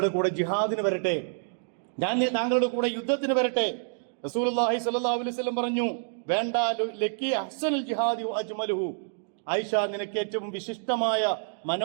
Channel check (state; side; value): silent; left; digital silence